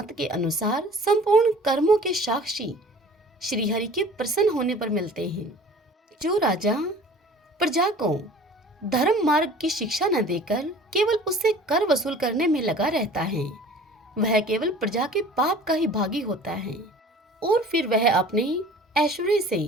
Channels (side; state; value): both; normal; correlation 0.46